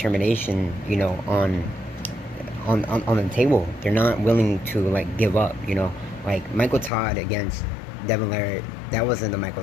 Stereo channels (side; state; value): right; drops out; at 6.9 s